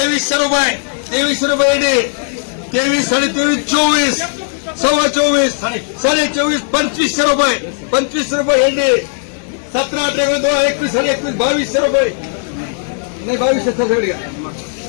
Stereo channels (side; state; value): right; silent; 66 dB below the other